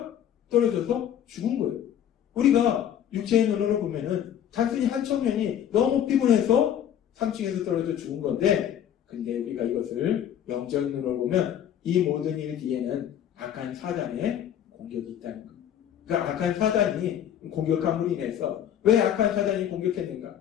떨어져서 죽은 거예요. 우리가 육체의 눈으로 보면은 단순히 한 청년이 너무 피곤해서 3층에서 떨어져 죽은 건데 근데 우리가 이것을 영적 눈으로 보면 이 모든 일 뒤에는 악한 사단의 공격이 있다는 것. 그 악한 사단이 공격함으로 인해서 왜 악한 사단이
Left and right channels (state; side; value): quieter; right; 9.9 dB